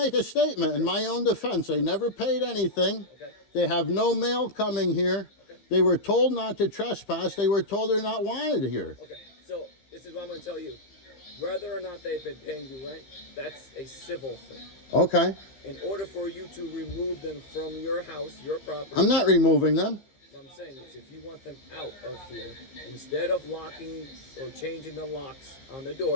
a statement in my own defense. They never paid anything. Okay. They have no mail coming here. Okay. They were told not to trespass. They were told they're not wanted here. Okay, so this is what I'm going to tell you. Whether or not they've been paying you rent, that's a civil thing. Okay. In order for you to remove them from your house, your property... I'm not removing them. What I'm saying is, if you want them out of here, instead of locking or changing the locks on the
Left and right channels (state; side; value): late; right; 15 ms